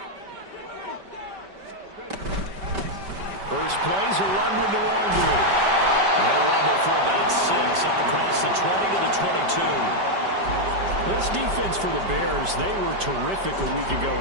First play's a run with Nwangu. He'll rumble for about 6 up across the 20 to the 22. This defense for the Bears, they were terrific a week ago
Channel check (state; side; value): late; left; 5.2 ms